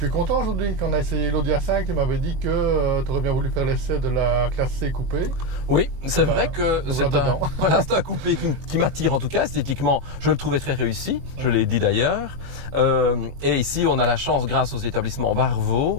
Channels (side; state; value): left; late; 22 ms